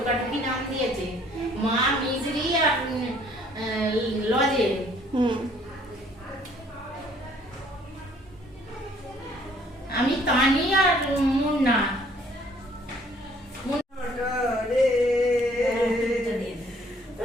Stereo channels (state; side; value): normal; both; correlation 0.60